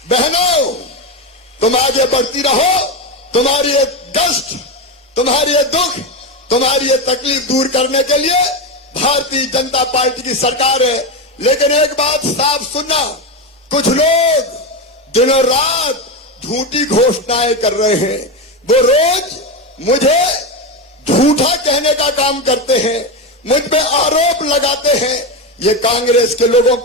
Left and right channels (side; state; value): both; normal; correlation 0.14